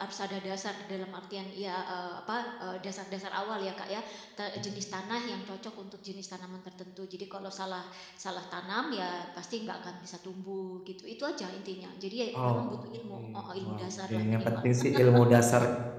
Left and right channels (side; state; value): both; identical; correlation 1.00